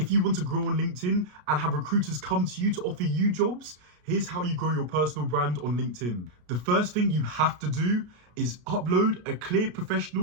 you want to grow on LinkedIn and have recruiters come to you to offer you jobs, here's how you grow your personal brand on LinkedIn. The first thing you have to do is upload a clear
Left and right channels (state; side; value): late; left; 33 ms